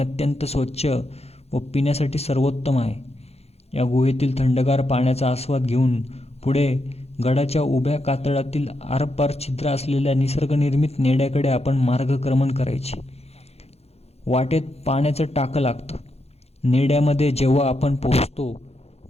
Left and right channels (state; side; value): late; right; 0.30 ms